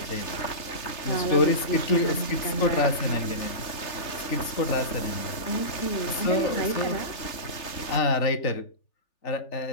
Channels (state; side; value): late; right; 3.4 ms